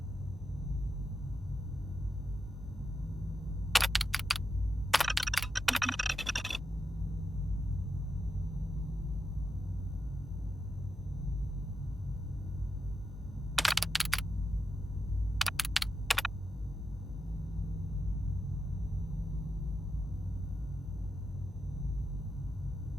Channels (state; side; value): normal; both; correlation 0.87